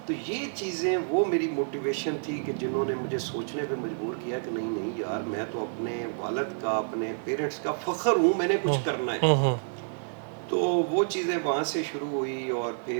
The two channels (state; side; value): silent; left; 59 dB below the other